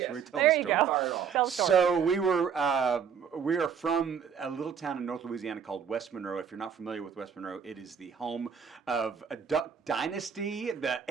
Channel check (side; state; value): left; quieter; 7.2 dB